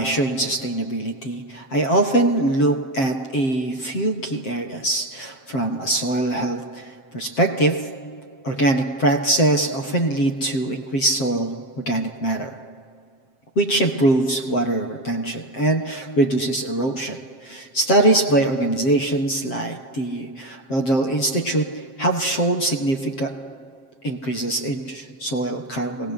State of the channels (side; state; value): right; late; 7.6 ms